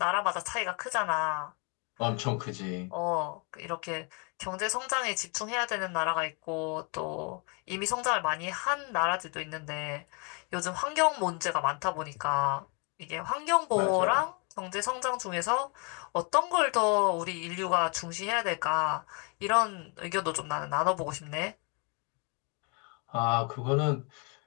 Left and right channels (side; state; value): right; quieter; 33.9 dB